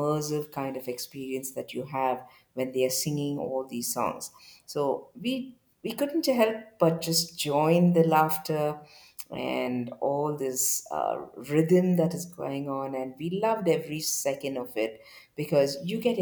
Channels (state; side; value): identical; both; correlation 1.00